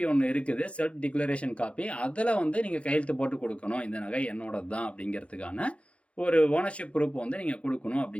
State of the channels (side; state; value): right; late; 0.061 ms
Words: ஒன்று இருக்குது, செல்ஃப் டிக்ளரேஷன் காப்பி, அதில் வந்து நீங்கள் கையெழுத்து போட்டு கொடுக்கணும், இந்த நகை என்னோடது தான் அப்படிங்கிறதுக்கான ஒரு ஓனர்ஷிப் ப்ரூஃப் வந்து நீங்கள் கொடுக்கணும்